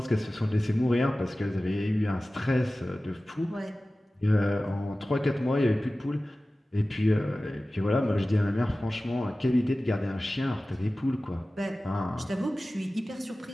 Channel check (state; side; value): normal; both; correlation 0.96